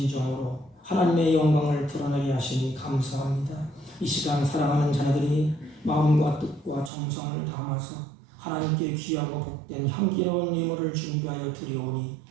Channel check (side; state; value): left; drops out; at 6.9 s